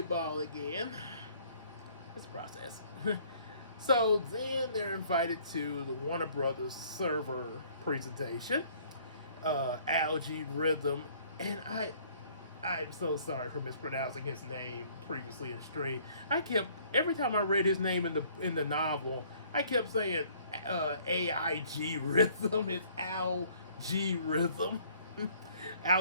again. It's a process. So then they're invited to the Warner Brothers server presentation. Algae Rhythm, and I'm so sorry for mispronouncing his name previously in stream. Every time I read his name in the novel, I kept saying AIG Rhythm. It's Algae Rhythm.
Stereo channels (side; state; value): both; inverted; correlation -0.59